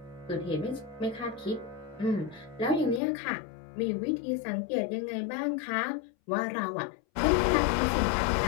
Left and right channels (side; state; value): right; drops out; at 3.0 s